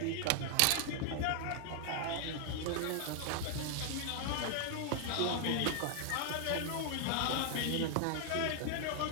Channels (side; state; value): both; different; correlation 0.00